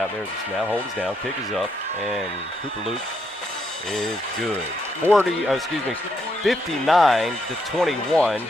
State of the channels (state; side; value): normal; both; correlation 0.77